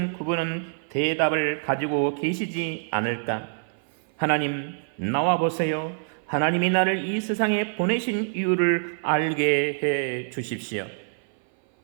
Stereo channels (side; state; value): left; silent; 56 dB below the other